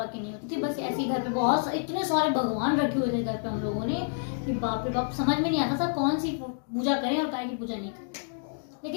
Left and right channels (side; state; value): right; silent; digital silence